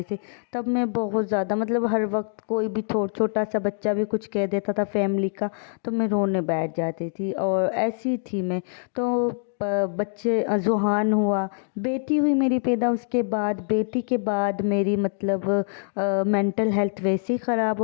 से। तब मैं बहुत ज़्यादा मतलब हर वक्त कोई भी छोटा सा बच्चा भी कुछ कह देता था फैमिली का, तो मैं रोने बैठ जाती थी और ऐसी थी मैं। तो बच्चे जुहान हुआ, बेटी हुई मेरी पैदा, उसके बाद बेटी के बाद मेरी मतलब मेंटल हेल्थ वैसे ही ख़राब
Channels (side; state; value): right; silent; 62 dB below the other